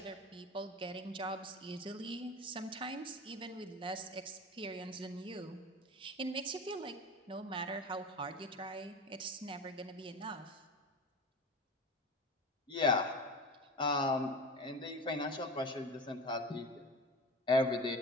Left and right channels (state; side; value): normal; both; correlation 0.30